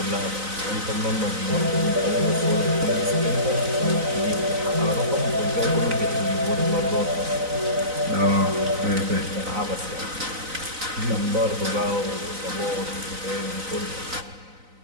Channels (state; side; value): late; left; 4.0 ms